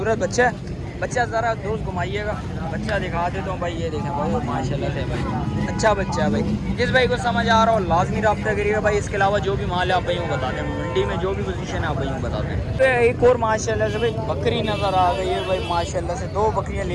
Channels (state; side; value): identical; both; correlation 1.00